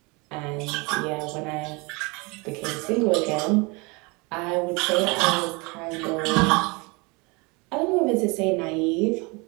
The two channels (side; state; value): left; quieter; 28.1 dB